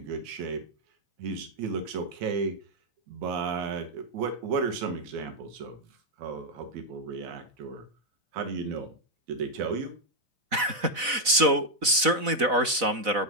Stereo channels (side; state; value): left; late; 4.0 ms